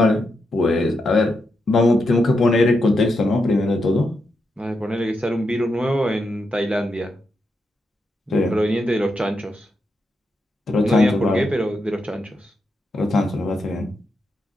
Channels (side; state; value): both; normal; correlation 0.84